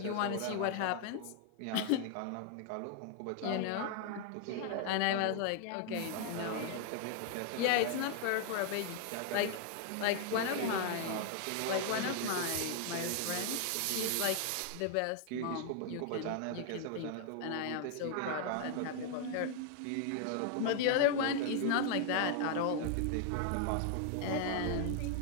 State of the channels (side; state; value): both; different; correlation 0.00